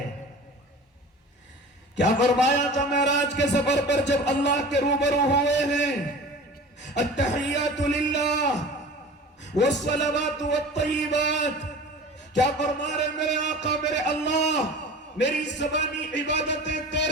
کیا فرمایا تھا معراج کے سفر پر جب اللہ کے روبرو ہوئے ہیں؟ التحیات للہ والصلوات والطیبات۔ کیا فرما رہے میرے آقا میرے اللہ؟ میری زبانی عبادتیں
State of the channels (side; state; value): both; normal; correlation 0.38